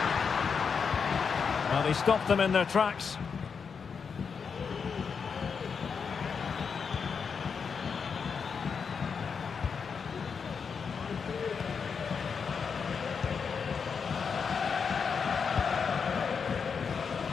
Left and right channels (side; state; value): right; quieter; 6.0 dB